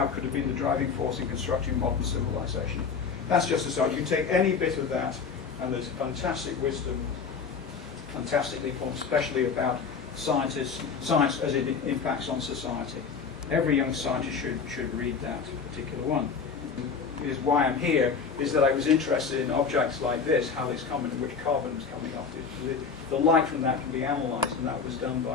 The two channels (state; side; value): quieter; right; 5.7 dB